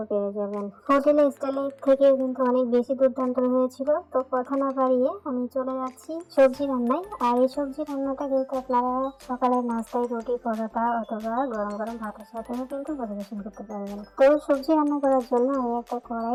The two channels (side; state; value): both; identical; correlation 1.00